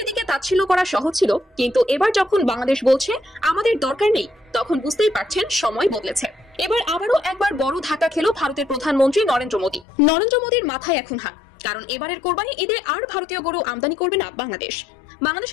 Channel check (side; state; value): right; drops out; at 9.9 s